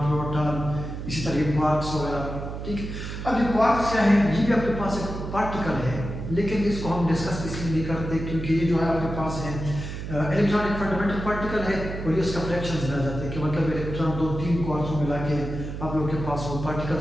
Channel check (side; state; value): right; noise; hum, 7 dB below the sound